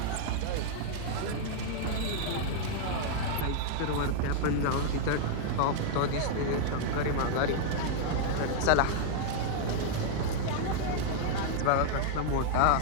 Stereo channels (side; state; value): both; different; correlation -0.01